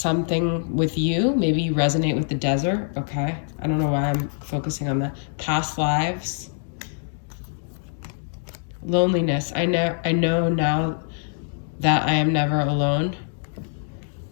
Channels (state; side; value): silent; right; digital silence